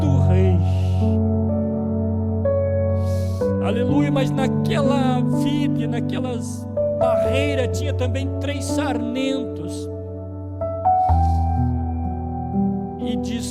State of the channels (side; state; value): both; identical; correlation 1.00